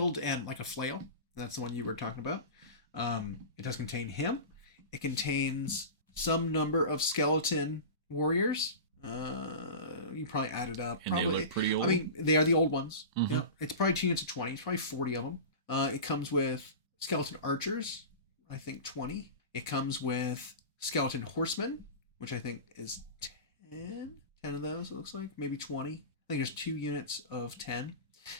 and like a flail. That's the one you were talking about. It does contain him. It contains some number of skeleton warriors. You probably add it up. And probably. They look pretty old. I mean, they are the old ones. Mm-hmm. Yeah, it's probably 2 units of 20. It's probably 40 of them. It comes with skeleton archers. I think 20. It comes with skeleton horsemen, which I think is 10 of those, it looks like. Maybe 20. I think there's 2 units of 10.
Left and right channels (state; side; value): inverted; both; correlation -0.30